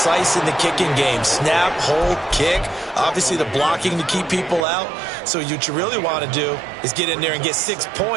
in the kicking game. Snap, hold, kick. Obviously the blocking to keep people out. So what you really want to do is get in there and get 6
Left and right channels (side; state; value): left; drops out; at 4.7 s